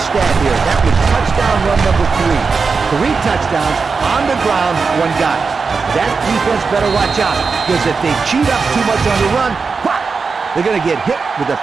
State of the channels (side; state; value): left; quieter; 4.8 dB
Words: here. That was touchdown run number 3. 3 touchdowns on the ground, 1 guy. That defense better watch out, because if they cheat up too much on the run, whop, they're going to get hit with a